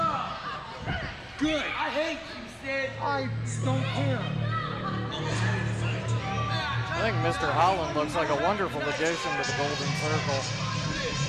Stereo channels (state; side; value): identical; both; correlation 1.00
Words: Good. I hate you, Sid. I don't care. I think Mr. Holland looks like a wonderful addition to the Golden Circle.